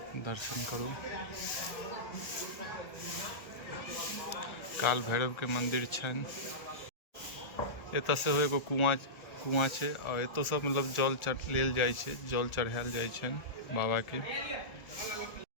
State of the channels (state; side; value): late; right; 1.4 ms